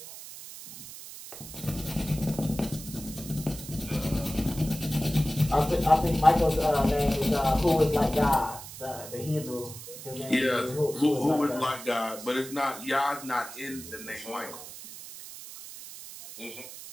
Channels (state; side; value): noise; right; hiss, 13 dB below the sound